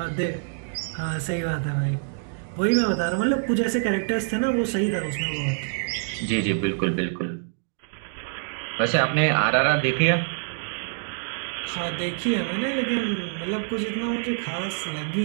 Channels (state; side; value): silent; left; 61 dB below the other